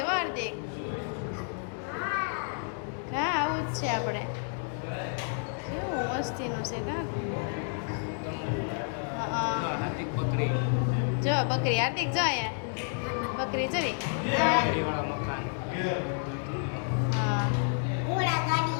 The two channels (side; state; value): right; silent; 57 dB below the other